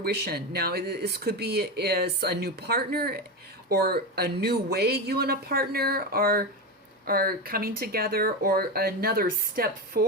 Now, this could be as a new partner or a new way you and a partner are are coming together, or another step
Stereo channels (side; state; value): both; normal; correlation 0.16